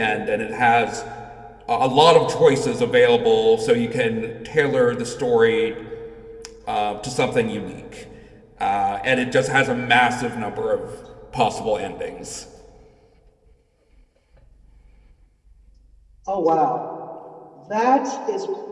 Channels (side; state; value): both; identical; correlation 1.00